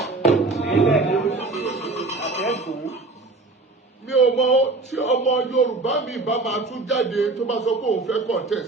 Mi ò mọ tí ọmọ Yorùbá mi bá máa tún jáde tó bá sọ pé òun fẹ́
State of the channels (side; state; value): left; quieter; 3.4 dB